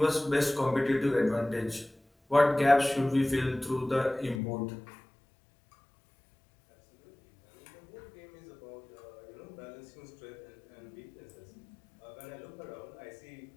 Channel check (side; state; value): right; drops out; at 4.4 s